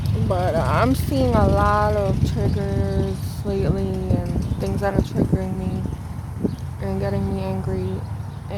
But I'm seeing a lot of triggers lately and things that are triggering me and getting me angry.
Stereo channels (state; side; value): identical; both; correlation 1.00